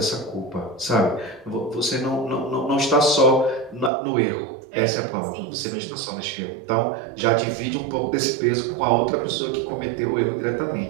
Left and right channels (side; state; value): left; drops out; at 3.9 s